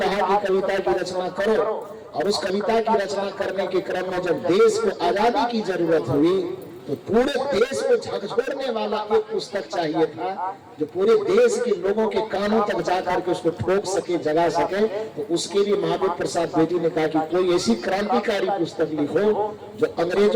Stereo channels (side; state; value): both; identical; correlation 1.00